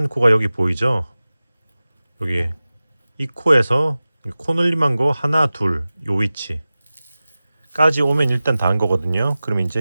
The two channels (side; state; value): both; inverted; correlation -0.96